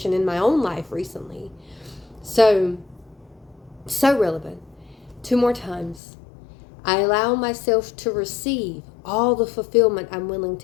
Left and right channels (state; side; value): drops out; right; at 6.0 s